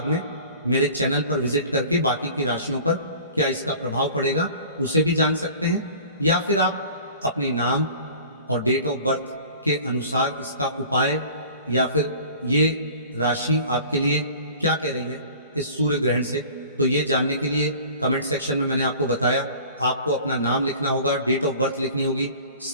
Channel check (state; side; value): inverted; both; correlation -0.44